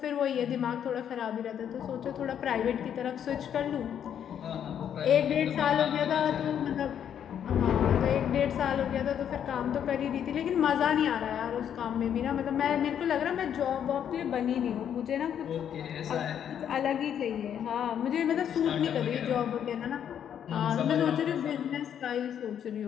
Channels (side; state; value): right; quieter; 9.1 dB